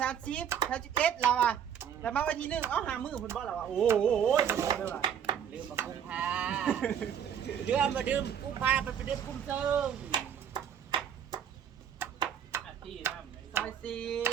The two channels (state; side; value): quieter; left; 8.6 dB